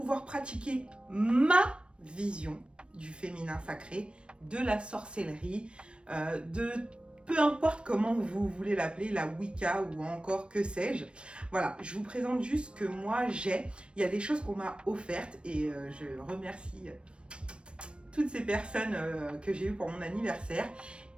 pratiquer ma vision du féminin sacré, de la sorcellerie, de peu importe comment vous voulez l'appeler, la Wicca ou encore que sais-je. Voilà, je vous présente juste ce que moi j'ai. Il y a des choses qu'on m'a offertes et je remercie toutes ces personnes que j'ai eues pour mon anniversaire.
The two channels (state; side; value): late; left; 0.058 ms